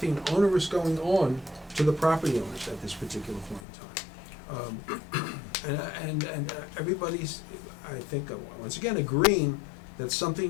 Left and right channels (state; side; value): drops out; right; at 3.6 s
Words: onerous going on to the property owners at this particular point in time. And everybody's, I think, once again, agreeing that